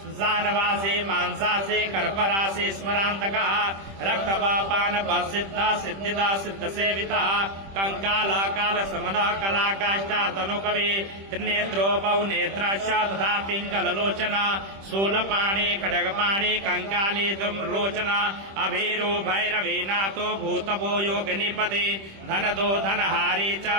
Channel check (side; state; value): left; late; 26 ms